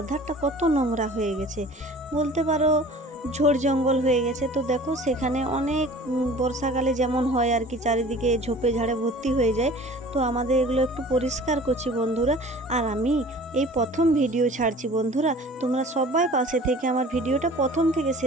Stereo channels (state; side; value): normal; both; correlation 0.45